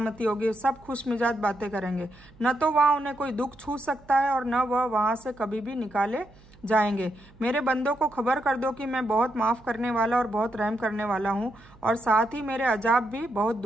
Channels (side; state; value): right; noise; hum, 25 dB below the sound